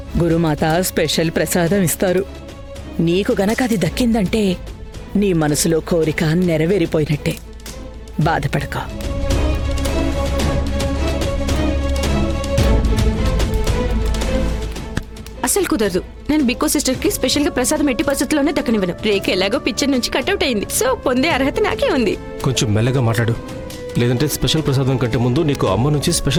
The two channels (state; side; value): identical; both; correlation 1.00